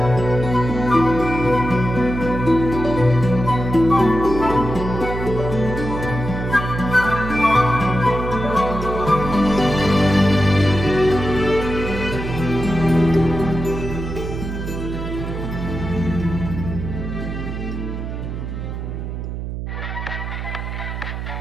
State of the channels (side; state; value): right; noise; hum, 6 dB below the sound